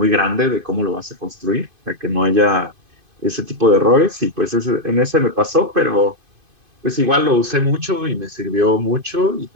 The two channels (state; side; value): late; left; 2.5 ms